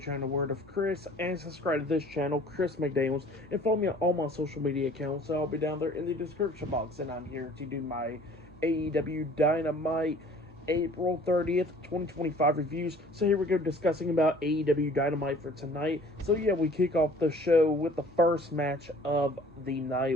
Word of Chris, and subscribe to this channel, Chris McDaniels, and follow me on all my social media accounts. I'll be down there in the description box, and I'm here to do my AEW Dynamite April 30th, 2025 reviews. So here we go, discussing about AEW Dynamite for tonight. So yeah, we kick off the show with the first match of the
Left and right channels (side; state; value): both; normal; correlation 0.51